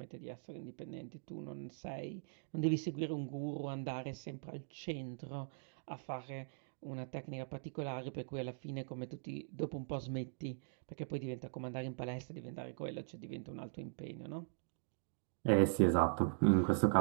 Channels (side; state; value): left; silent; digital silence